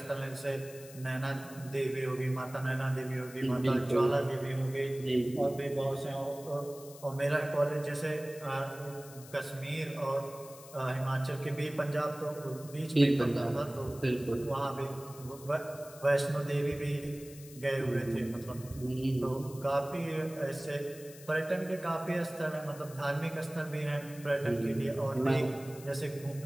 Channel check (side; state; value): left; noise; hiss, 18 dB below the sound